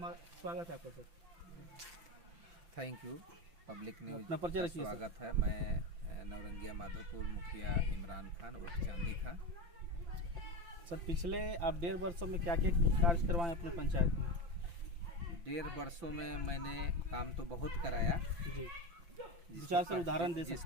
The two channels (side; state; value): left; late; 5.9 ms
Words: स्वागत है आपका sir. Thank you. Public news अपना परिचय रखिए। स्वागत है। मैं नवरंगिया माधोपुर मुखिया इमरान खान उर्फ चांदी खान। सर पिछले आप 1.5 वर्षों में क्या क्या कार्य करवाएं अपने पंचायत में? 1.5 वर्षों में मैंने काम तो बहुत कराया जी, विचार से उदाहरण दे सकते